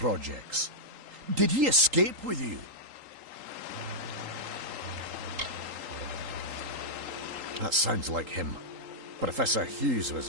Did he escape with you? That sounds like him. Professor Hughes was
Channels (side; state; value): left; late; 3.8 ms